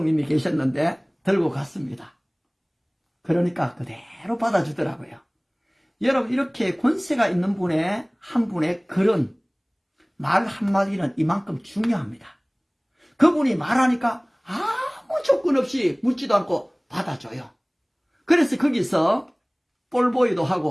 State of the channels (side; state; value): both; identical; correlation 1.00